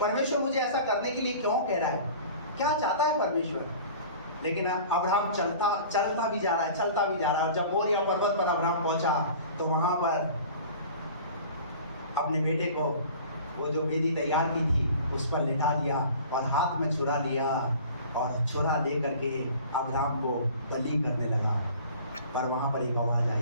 मुझे ऐसा करने के लिए क्यों कह रहा है, क्या चाहता है परमेश्वर। लेकिन अब्राहम चलता भी जा रहा है। जब मोरिया पर्वत पर अब्राहम पहुंचा तो वहां पर अपने बेटे को, वो जो वेदी तैयार की थी, उस पर लिटा दिया और हाथ में छुरा लिया, और छुरा ले करके अब्राहम को बलि करने लगा। पर वहां पर एक आवाज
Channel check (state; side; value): inverted; both; correlation -0.44